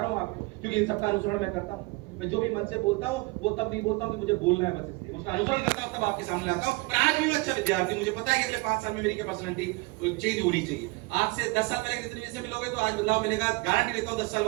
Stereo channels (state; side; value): quieter; left; 24.5 dB